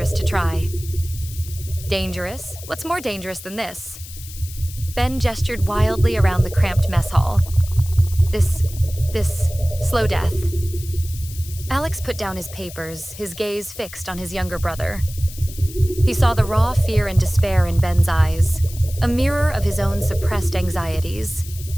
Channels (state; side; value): noise; left; hiss, 15 dB below the sound